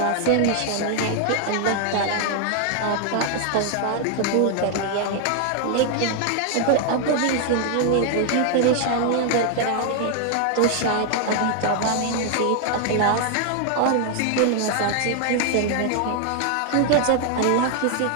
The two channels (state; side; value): different; both; correlation 0.00